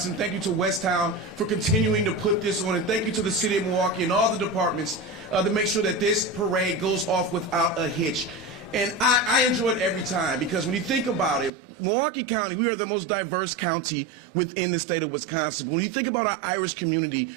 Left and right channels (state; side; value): drops out; left; at 11.5 s